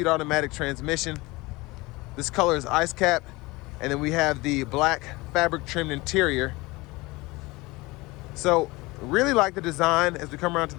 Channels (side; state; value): right; quieter; 22.4 dB